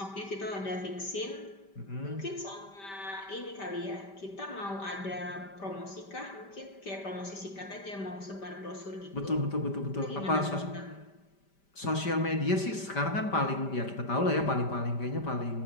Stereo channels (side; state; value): right; late; 5.1 ms